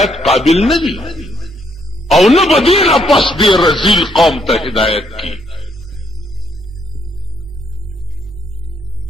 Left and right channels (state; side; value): normal; both; correlation 0.72